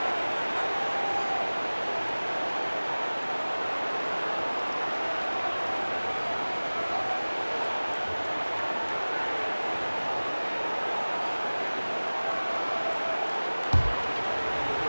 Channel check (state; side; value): inverted; both; correlation -1.00